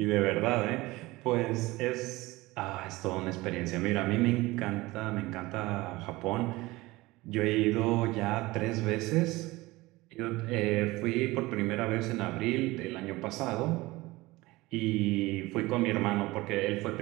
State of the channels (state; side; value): quieter; left; 20.4 dB